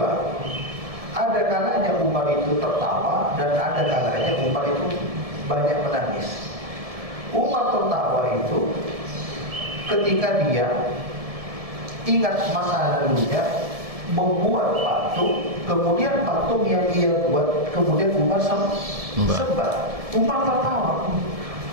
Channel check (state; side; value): late; left; 1.7 ms